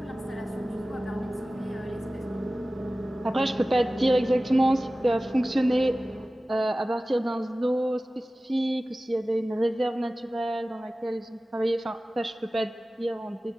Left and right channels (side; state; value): both; normal; correlation 0.97